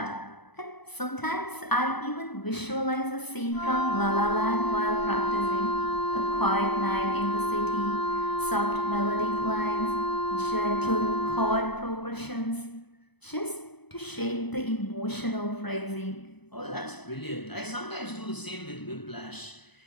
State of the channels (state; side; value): late; right; 0.99 ms